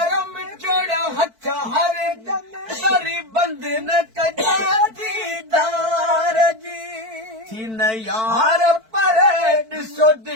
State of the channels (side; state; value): left; late; 4.5 ms